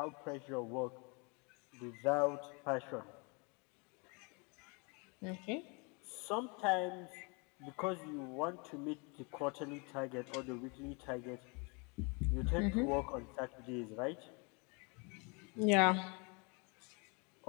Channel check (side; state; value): right; quieter; 32.1 dB